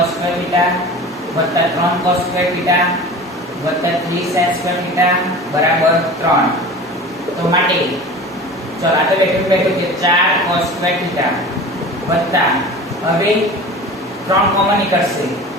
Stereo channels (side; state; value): both; normal; correlation 0.37